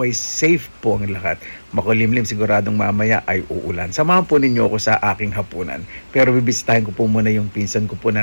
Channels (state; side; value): inverted; both; correlation -1.00